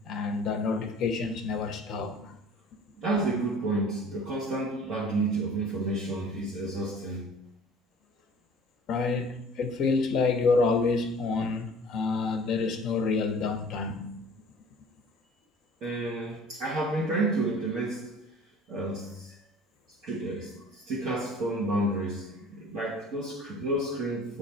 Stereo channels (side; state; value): both; normal; correlation 0.48